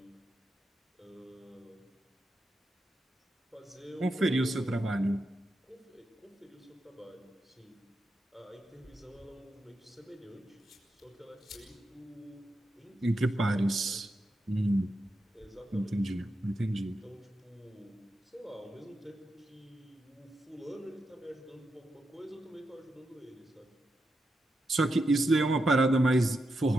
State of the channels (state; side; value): normal; both; correlation 0.86